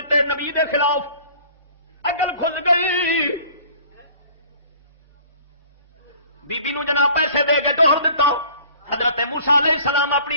نبی دے خلاف. اگل کھل گئی بی بی نو جناب پیسے دے کے توڑ دیتا. حضرت موسیٰ علیہ السلام اپنی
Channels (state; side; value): inverted; both; correlation -0.50